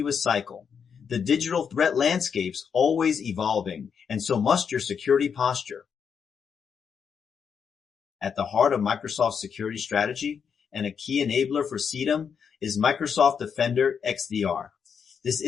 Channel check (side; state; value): right; quieter; 6.8 dB